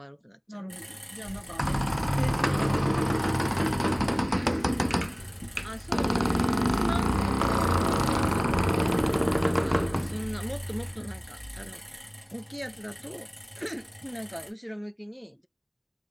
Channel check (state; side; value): identical; both; correlation 1.00